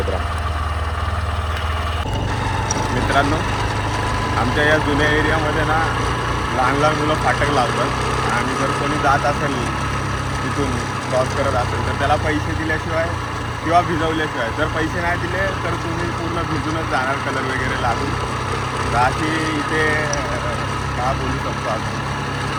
राहा. मित्रांनो, आमच्या या जुन्या एरियामध्ये ना लहान लहान मुलं फाटक लावतात आणि जर कोणी जात असेल तिथून क्रॉस करत असेल तर त्याला पैसे दिल्याशिवाय किंवा भिजवल्याशिवाय, जर पैसे नाही दिले तर तुम्ही पूर्ण भिजूनच जाणार कलर वगैरे लागून. तर अशी इथे का बोलू शकतो आपण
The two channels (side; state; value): both; identical; correlation 1.00